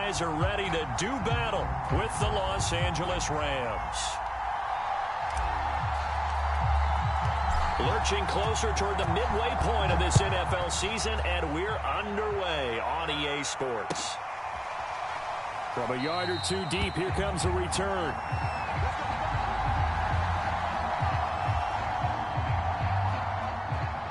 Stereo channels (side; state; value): both; identical; correlation 1.00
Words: are ready to do battle with the Los Angeles Rams. Lurching closer toward the midway point of this NFL season, and we're underway on EA Sports. From a yard or two deep, here comes a return.